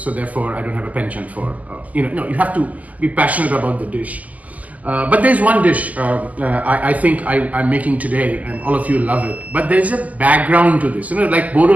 therefore I don't have a penchant for. No, you have to be passionate about the dish. But there's one dish I think I'm making today, and all of you love it. But there's a background to this. Like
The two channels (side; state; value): left; late; 0.076 ms